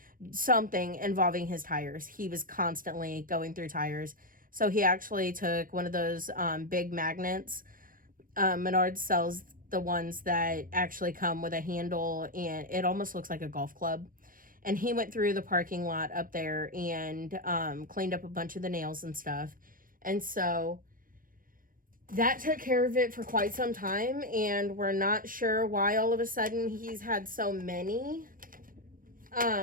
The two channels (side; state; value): left; late; 0.40 ms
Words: something involving his tires. He was constantly going through tires. So he actually took one of those big magnets. Menards sells the ones that actually come with a handle, and it almost looks like a golf club. And he went through the parking lot up there and cleaned up a bunch of the nails and stuff. And so that took care of it for quite some time. And we're not sure why all of a sudden he's had so many